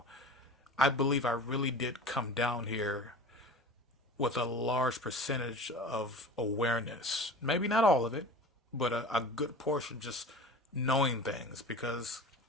I believe I really did come down here with a large percentage of awareness. Maybe not all of it, but a good portion just knowing things. Because,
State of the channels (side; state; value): both; normal; correlation 0.37